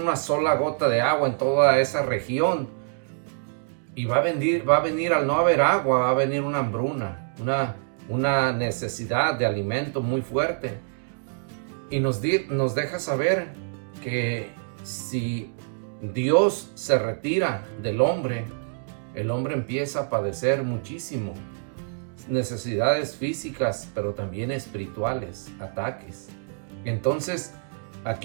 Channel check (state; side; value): silent; left; digital silence